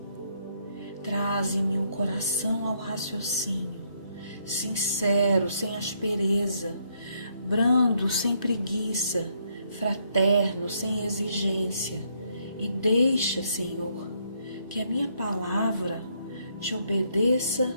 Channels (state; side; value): inverted; both; correlation -0.73